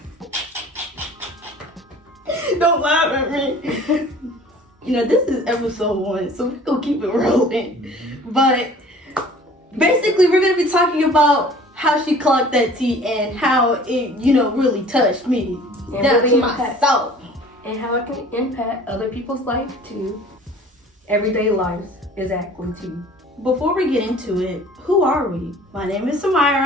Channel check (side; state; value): both; normal; correlation 0.48